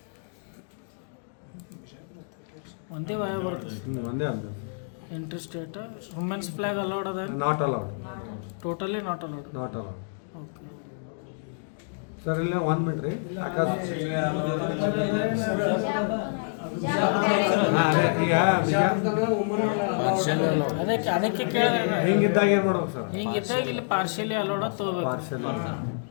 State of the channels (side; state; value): right; silent; digital silence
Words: ಒಂದೇ ವಾಯ ಒಂದೇ ಅಂದ ಇಂಟರ್ಸ್ಟೇಟ್. ವುಮೆನ್ಸ್ ಫ್ಲಾಗ್ ಅಲೌಡ್ ಅದ? Not allowed, totally not allowed. Not allowed okay sir. ಇಲ್ಲೇ 1 ಮಿನಿಟ್ ರೀ. ಅದೇ ಈಗ ಅದಕ್ಕೆ ಕೇಳಿದ್ರೆ ಹಿಂಗಿದ್ದಾಗ ಏನು ಮಾಡ್ಬೇಕು ಸರ್? ಹಿಂಗಿದ್ದಾಗ ಇಲ್ಲಿ ಪಾರ್ಶಿಯಲಿ ಅಲೌಡ್ ತಗೋಬೇಕು.